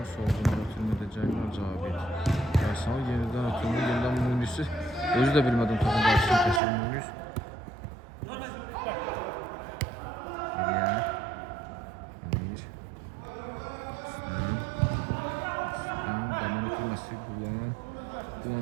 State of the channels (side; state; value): left; drops out; at 6.6 s